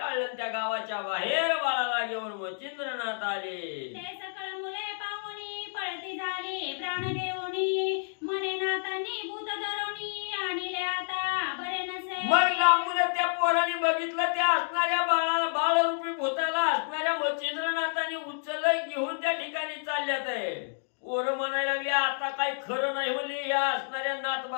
त्या गावाच्या बाहेर बाळाला घेऊन मच्छिंद्रनाथ आले. ते सकळ मुले पाहुणी पळती झाली प्राण घेऊनी मने नातांनी भूत धरोनी आणले आता बरे नसे. मग लांबून त्या पोराने बघितलं त्या असणाऱ्या बाळाला बाळरूपी भूताला असणाऱ्या मच्छिंद्रनाथाने उचललं घेऊन त्या ठिकाणी चालल्यात आहे. पोरं म्हणायला लागली आता काही खरं नाही म्हणले. या असणाऱ्या नाथ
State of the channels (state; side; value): silent; right; digital silence